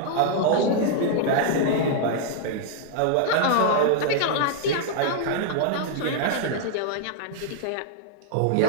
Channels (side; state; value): both; different; correlation -0.01